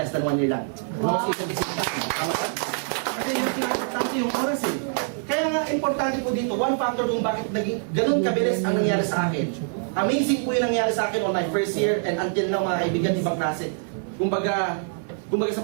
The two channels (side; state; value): left; silent; digital silence